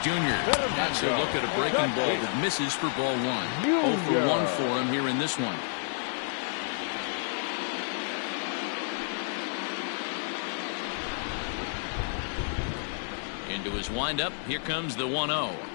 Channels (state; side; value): silent; right; 58 dB below the other